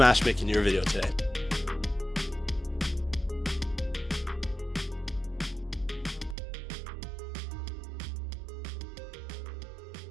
making your video today.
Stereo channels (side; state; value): left; drops out; at 6.4 s